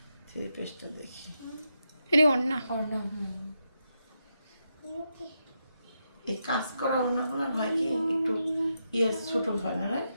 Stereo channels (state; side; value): inverted; both; correlation -0.85